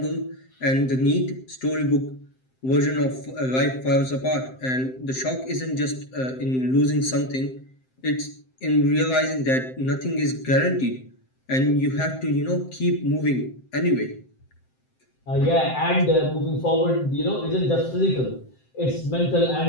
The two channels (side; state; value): right; late; 7.7 ms